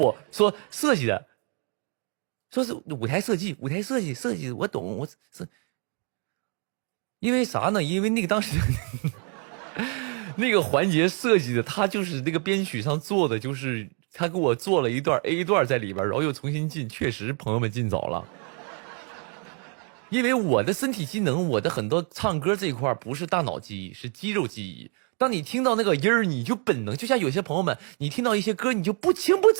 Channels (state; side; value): quieter; left; 39.1 dB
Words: 说设计的，说是舞台设计我懂，我是因为啥呢？因为那个当时那个环节设计的，他就是那个编曲上做的，就是他给我做了一段 A 段在里边，然后又重新进，确实朋友们进早了。因为我的身体机能，我的很多唱歌这一块不是大脑记忆，是肌肉记忆。当你听到那个音儿，你就本能，就像有些朋友们，你听到一些歌，你就不情不